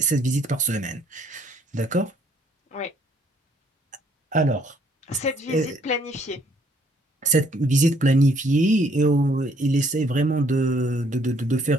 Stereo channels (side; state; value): both; normal; correlation 0.65